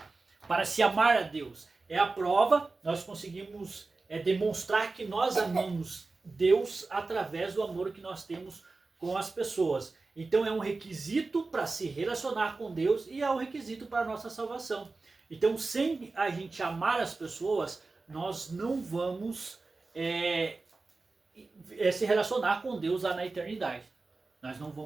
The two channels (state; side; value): quieter; left; 3.7 dB